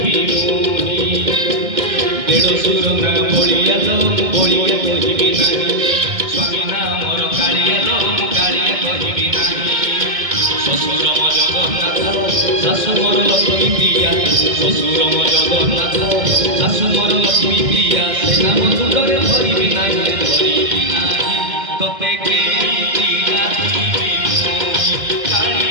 মুই দেড়শোর না বলিয়া লো বলিয়া কহিবি নাই স্বামী না মোর কালিয়া লো কালিয়া কহিবি নাই শ্বশুর মো জগন্নাথ শাশু মোর লক্ষ্মী প্রিয়া শ্বশুর মো জগন্নাথ শাশু মোর লক্ষ্মী প্রিয়া সে নাম দুধরে ধরিবি নাই ধরিবি নাই তোতে কেমিতি ডাকিবি মুই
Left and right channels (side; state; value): left; late; 2.1 ms